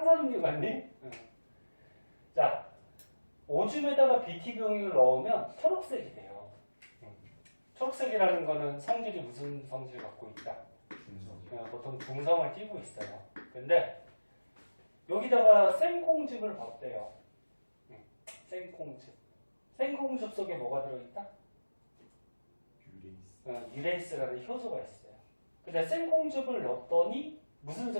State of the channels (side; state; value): both; inverted; correlation -1.00